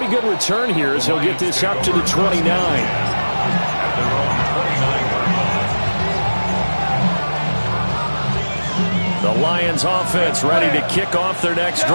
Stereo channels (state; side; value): inverted; both; correlation -1.00